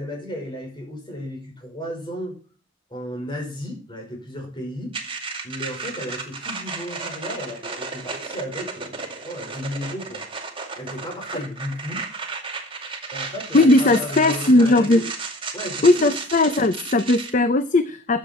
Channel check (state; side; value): normal; both; correlation 0.47